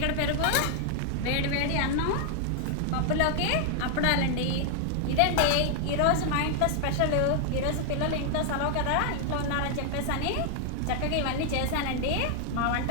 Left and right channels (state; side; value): different; both; correlation 0.00